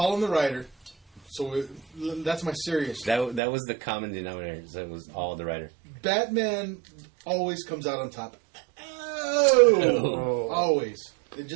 on the writer. So that's my serious. That was the common denominator. So it was all the writer. Batman always comes out on top. Oh. Always.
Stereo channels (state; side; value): drops out; left; at 3.4 s